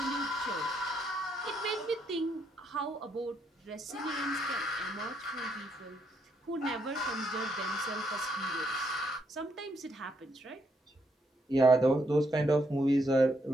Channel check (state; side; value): normal; both; correlation 0.76